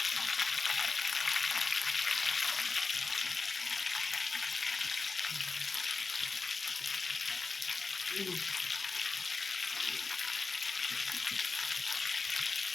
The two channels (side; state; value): right; quieter; 4.2 dB